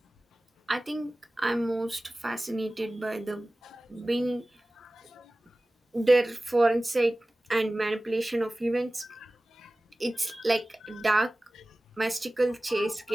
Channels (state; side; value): normal; both; correlation 0.97